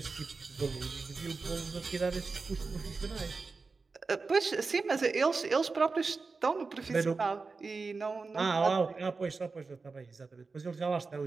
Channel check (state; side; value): quieter; left; 4.3 dB